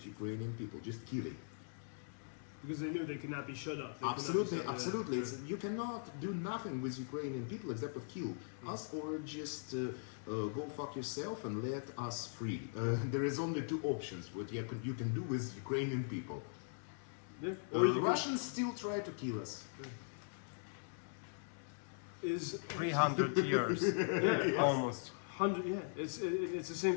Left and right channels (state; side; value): silent; right; digital silence